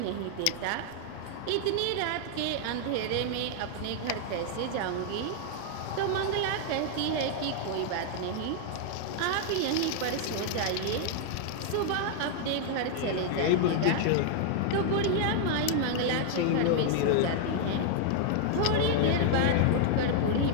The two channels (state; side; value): different; both; correlation 0.00